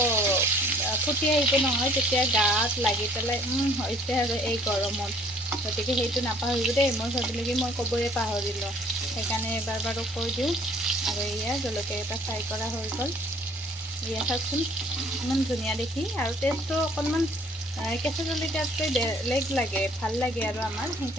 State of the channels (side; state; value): both; normal; correlation 0.57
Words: ফুটি আহিব নহয়, তেতিয়া গাত লাগি পেলাই হৈছে আৰু এই গৰমত। গতিকে সেইটো নাপাহৰিব দেই, মই ভাবিলোঁ কি মই ক'বই পাহৰিলোঁ, সেইকাৰণে এবাৰ বাৰু কৈ দিওঁ। আৰু এয়া জলকীয়াকেইটা ফ্ৰাই কৰা হৈ গ'ল, এয়া চাওকচোন ইমান ধুনীয়া দেখি, আৰু টেষ্টটো অকণমান কেঁচা জলকীয়াতকৈ বেলেগ লাগে, ভাল লাগে আৰু আমাৰ,